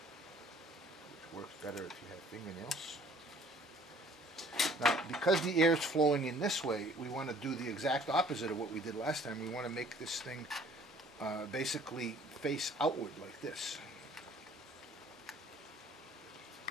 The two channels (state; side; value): normal; both; correlation 0.56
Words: Which works better if you have fingernails. Now, because the air is flowing in this way, we want to do the exact opposite of what we did last time. We want to make this thing basically face outward like this.